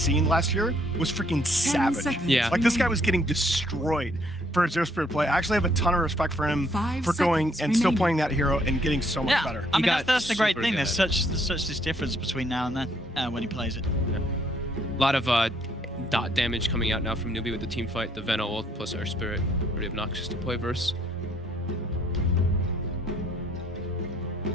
scene last year was freaking savage. Yeah. Like this guy was getting destroyed for his Earth Spirit play. I actually have a ton of respect for him for going and still playing that hero and getting so much better. I mean, that's the great thing. There's such this difference between now and then when he plays it. Yeah. A lot of dot damage coming out now from NewBee with the team fight. The Venno ult plus Earth Spirit. Pretty obnoxious to play verse.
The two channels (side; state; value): both; normal; correlation 0.67